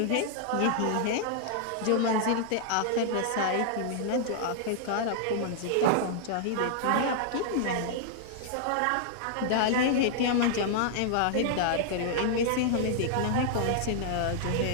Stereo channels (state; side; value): different; both; correlation -0.01